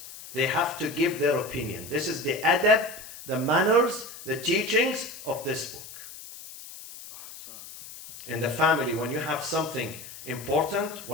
They have to give their opinion. This is the adab, the manners, the teachings of this book. In the family, when you have something important,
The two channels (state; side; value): noise; left; hiss, 14 dB below the sound